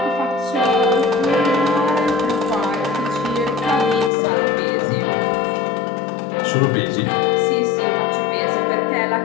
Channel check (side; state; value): right; drops out; at 4.1 s